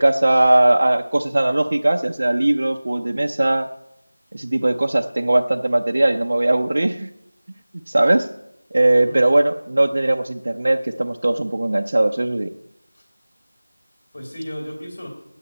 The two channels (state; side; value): inverted; both; correlation -0.99